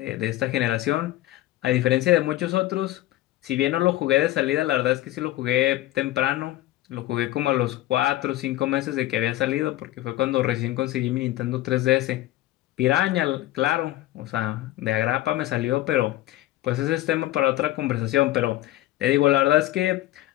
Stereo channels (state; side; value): quieter; right; 15.6 dB